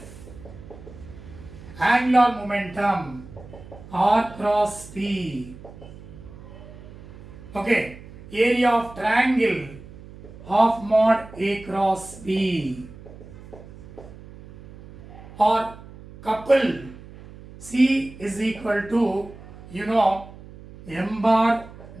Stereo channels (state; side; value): noise; right; hum, 17 dB below the sound